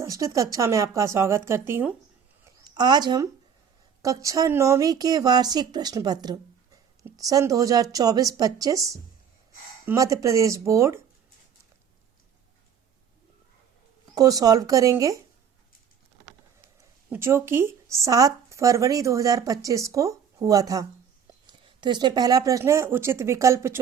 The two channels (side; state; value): left; quieter; 7.6 dB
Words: कक्षा में आपका स्वागत करती हूँ। आज हम कक्षा 9वीं के वार्षिक प्रश्न पत्र सन 2024-25 मध्य प्रदेश बोर्ड को सॉल्व करेंगे, जो कि 7 फरवरी 2025 को हुआ था। तो इसमें पहला प्रश्न है, उचित विकल्प